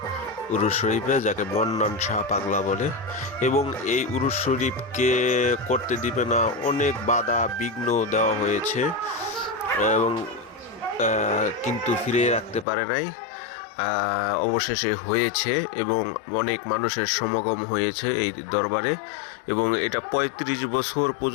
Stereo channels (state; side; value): drops out; right; at 12.7 s